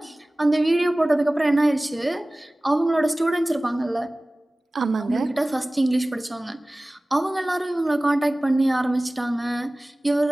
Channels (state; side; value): normal; both; correlation 0.98